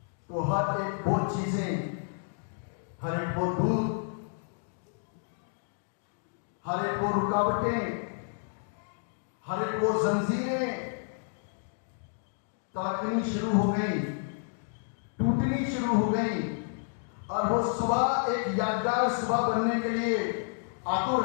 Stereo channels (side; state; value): right; silent; digital silence